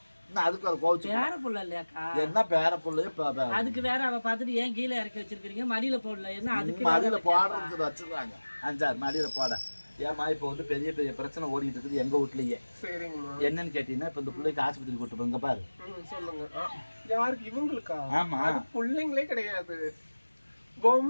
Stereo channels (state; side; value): inverted; both; correlation -1.00